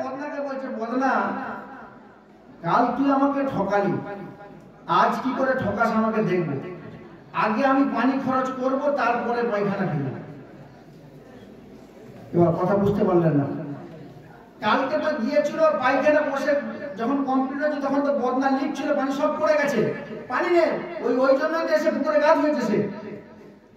বদনাকে বলছে, বদনা, কাল তুই আমাকে ঠকালি, আজ কি করে ঠকাস আমাকে দেখবো। আগে আমি পানি খরচ করব, তারপরে পায়খানা ফেলবো। এবার কথা বুঝতে পারলেন না? কালকে তো গিয়েছিল পায়খানা বসে যখন কমপ্লিট হয়েছে তখন তো বদনা লিক ছিল, পানি সব পড়ে গেছে, পানি নেই, ওই জন্য এসে পুকুরে গাছ হয়েছে সে।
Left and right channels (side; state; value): both; identical; correlation 1.00